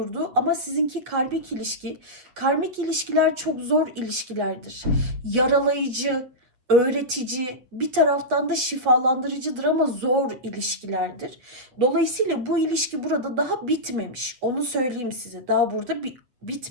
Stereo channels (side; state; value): left; late; 8.1 ms